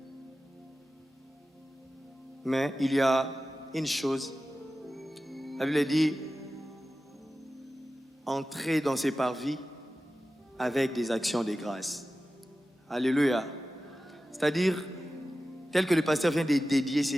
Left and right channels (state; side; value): normal; both; correlation 0.94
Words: Mais il y a une chose. La Bible dit entrer dans ses parvis avec des actions de grâce. Alléluia. C'est-à-dire, tel que le pasteur vient de dédier